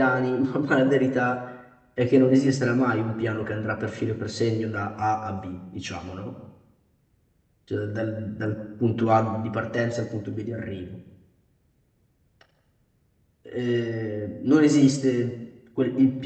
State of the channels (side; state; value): both; identical; correlation 1.00